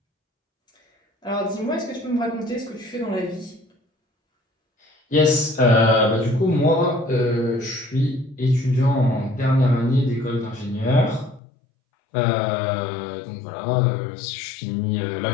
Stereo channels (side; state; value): right; drops out; at 11.4 s